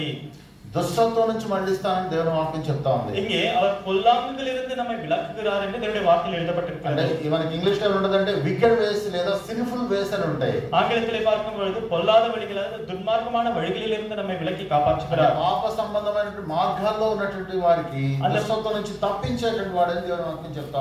దుష్టత్వం నుంచి మళ్ళిస్తానని దేవుని వాక్యం చెప్తా ఉంది. இங்கே அவர் பொல்லாங்குகளிலிருந்து நம்மை விலக்குகிறார் என்று தேவனுடைய வார்த்தையில் எழுதப்பட்டிருக்கிறது. అంటే మనకి ఇంగ్లీష్ లో ఉండదంటే వికెడ్ వేస్ లేదా సిన్ఫుల్ వేస్ అని ఉంటాయి. ஆங்கிலத்திலே பார்க்கும் பொழுது பொல்லாத வழிகள் அதாவது துன்மார்க்கமான வழிகளில் இருந்து நம்மை விலக்கி காப்பாற்றுகிறார். పాప సంబంధమైనటువంటి మార్గాల్లో ఉన్నటువంటి వారికి దుష్టత్వం నుంచి తప్పించేటువంటి వాడని దేవుని వాక్యం చెప్తా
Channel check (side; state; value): both; identical; correlation 1.00